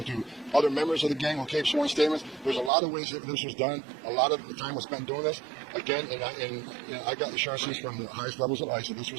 to other members of the gang who gave sworn statements. There's a lot of ways that this was done. A lot of the time was spent doing this. Again, I got assurances from the highest levels of ICE that this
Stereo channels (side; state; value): left; drops out; at 2.7 s